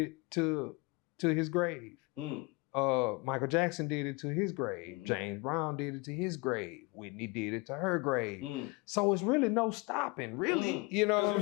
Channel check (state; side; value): quieter; right; 26.0 dB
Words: to his grave. Michael Jackson did it to his grave. James Brown did it to his grave. Whitney did it to her grave. So it's really no stopping, really. You know what